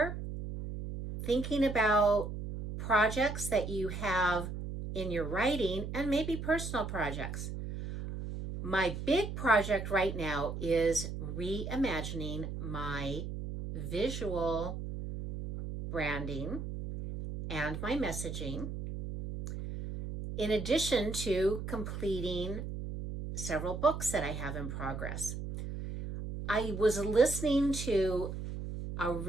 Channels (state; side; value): noise; right; hum, 6 dB below the sound